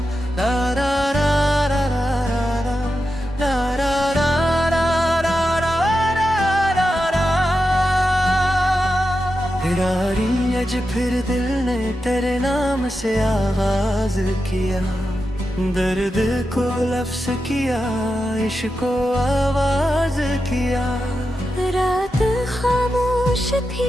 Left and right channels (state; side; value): normal; both; correlation 0.89